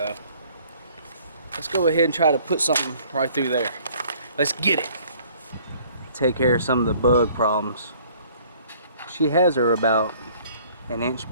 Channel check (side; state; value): both; inverted; correlation -0.56